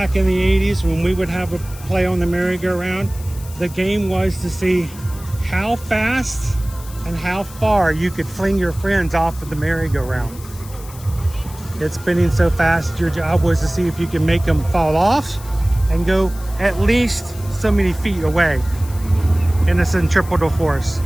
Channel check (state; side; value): noise; left; hiss, 18 dB below the sound